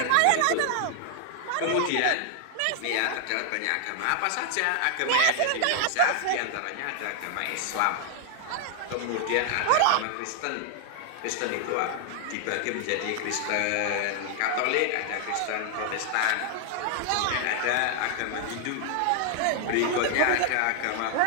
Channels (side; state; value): both; different; correlation 0.00